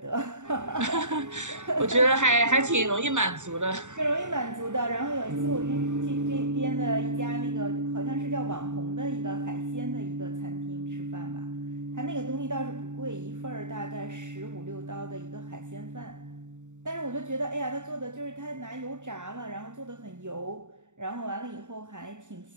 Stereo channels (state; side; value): late; left; 0.85 ms